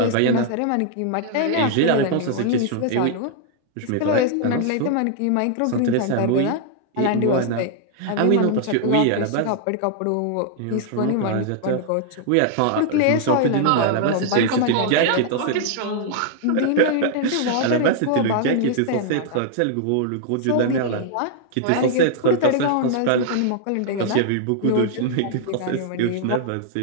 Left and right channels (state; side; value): different; both; correlation -0.01